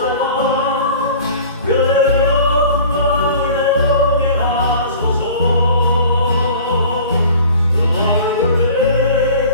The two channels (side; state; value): both; inverted; correlation -0.44